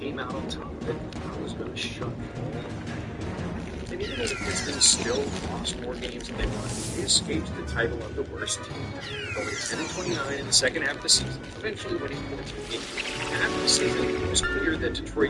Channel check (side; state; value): both; identical; correlation 1.00